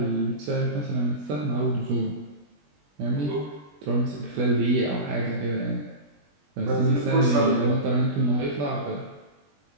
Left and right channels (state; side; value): late; left; 20 ms